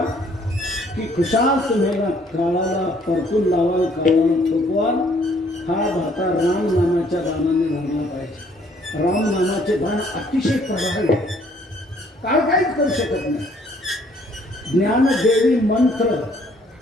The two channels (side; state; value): both; normal; correlation 0.62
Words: की खुशाल तुम्हाला काळाला परतून लावाल, काळाला थोपवाल. हा भाता राम नामाच्या बाणाने भरला पाहिजे. राम नामाचे बाण अतिशय प्रभावी. काळ काहीच करू शकत नाही. ज्ञानदेवी मंत्र